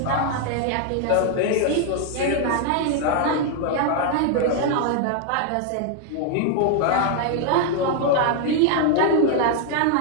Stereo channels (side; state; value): both; different; correlation 0.00